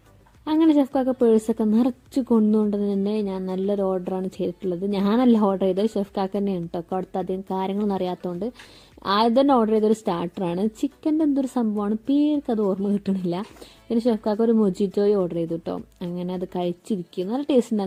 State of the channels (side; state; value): both; identical; correlation 1.00